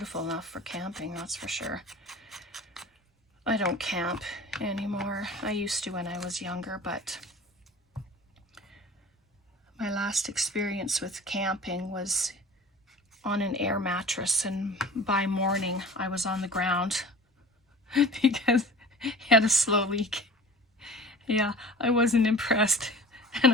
enough for camping, that's for sure. I don't camp anymore. I used to when I was younger, but my last experience with camping was on an air mattress, and by morning I was on the ground because I had a slow leak. Yeah, I wasn't impressed,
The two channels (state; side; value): normal; both; correlation 0.40